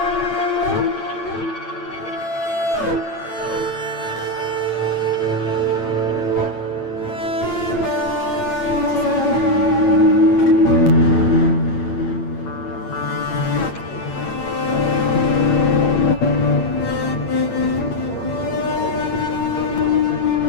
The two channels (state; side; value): late; right; 8.8 ms